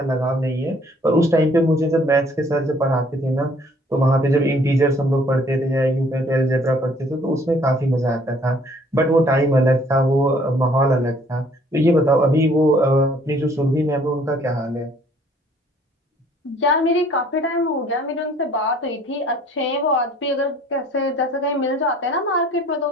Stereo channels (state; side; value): normal; both; correlation 0.59